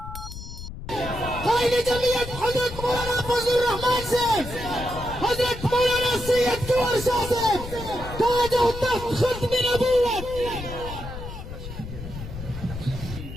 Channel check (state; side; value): noise; left; rumble, 10 dB below the sound